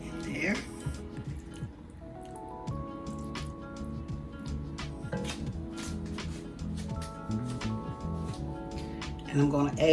in there. And I'm going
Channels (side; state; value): both; identical; correlation 1.00